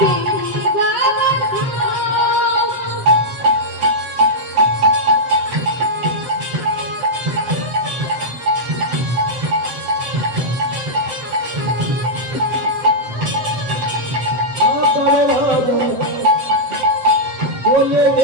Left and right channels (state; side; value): late; left; 7.7 ms